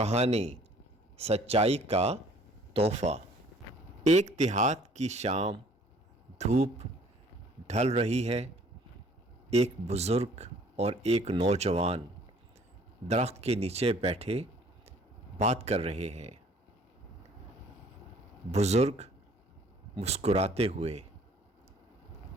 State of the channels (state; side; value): normal; both; correlation 0.56